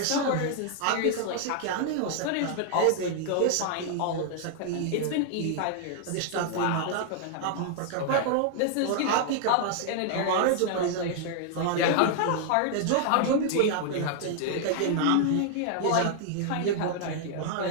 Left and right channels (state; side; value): different; both; correlation 0.00